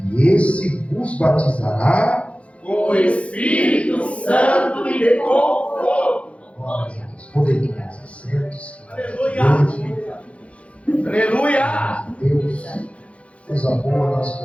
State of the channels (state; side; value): late; right; 0.063 ms